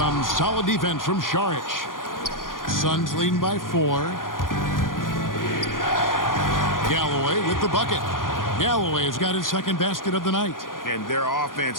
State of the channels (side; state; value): right; late; 0.90 ms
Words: solid defense from Saric. Suns leading by 4. Galloway with the bucket. Galloway has got his second basket of the night. And their